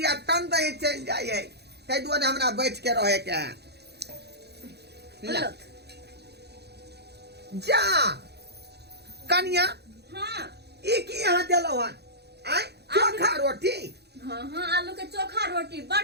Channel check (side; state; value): left; late; 0.48 ms